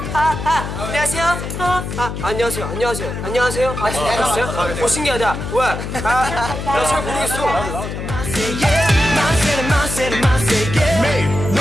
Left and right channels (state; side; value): noise; left; hum, 6 dB below the sound